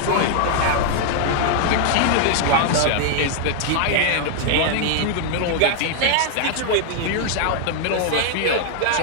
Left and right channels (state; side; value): different; both; correlation 0.00